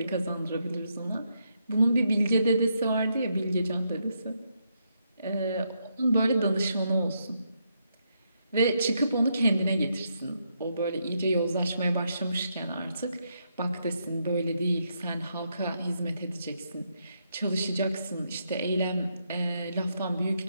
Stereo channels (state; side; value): inverted; both; correlation -0.79